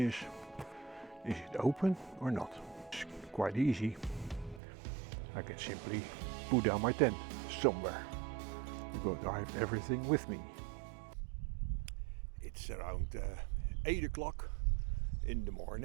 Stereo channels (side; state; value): left; drops out; at 4.6 s